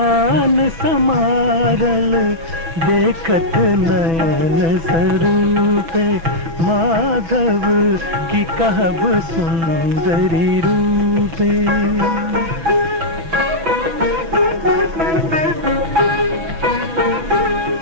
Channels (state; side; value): late; left; 6.0 ms